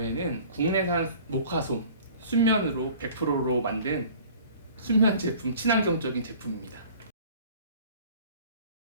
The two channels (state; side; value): inverted; both; correlation -0.48